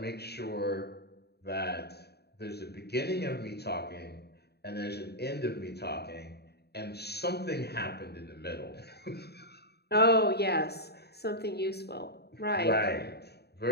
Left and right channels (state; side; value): late; right; 0.47 ms